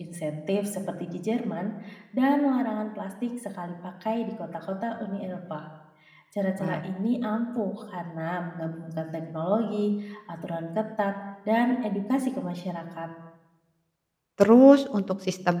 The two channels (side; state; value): both; identical; correlation 1.00